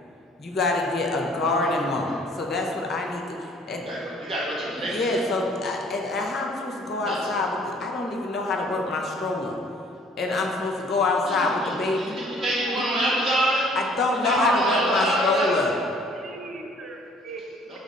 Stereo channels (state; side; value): normal; both; correlation 0.57